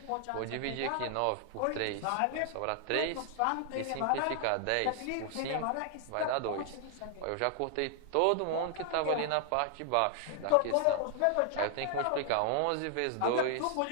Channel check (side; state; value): both; different; correlation 0.00